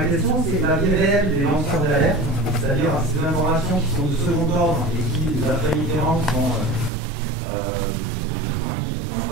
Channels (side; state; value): left; drops out; at 6.9 s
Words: question c'est la vie réelle des lanceurs d'alerte, c'est-à-dire ces informations qui sont de second ordre et qui, d'après Mitterrand, n'ont